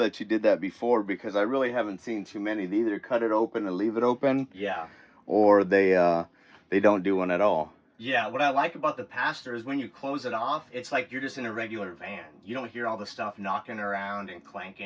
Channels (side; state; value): both; identical; correlation 1.00